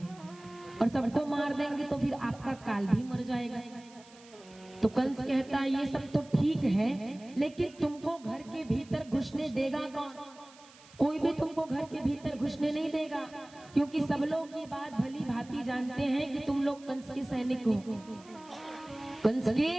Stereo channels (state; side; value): noise; right; hiss, 24 dB below the sound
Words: और सबको मार देंगे तो फिर आपका काल भी मर जाएगा। तो कंस कहता है ये सब तो ठीक है, लेकिन तुमको घर के भीतर घुसने देगा कौन? कोई भी तुमको घर के भीतर घुसने नहीं देगा, क्योंकि सब लोग ये बात भली भांति जानते हैं कि तुम लोग कंस के सैनिक हो, कंस के